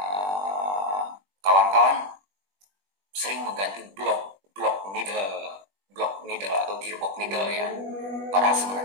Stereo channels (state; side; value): late; left; 21 ms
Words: kawan-kawan sering mengganti blok needle atau gearbox needle ya, padahal